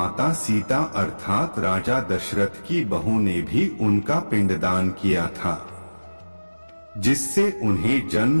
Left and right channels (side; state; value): both; inverted; correlation -1.00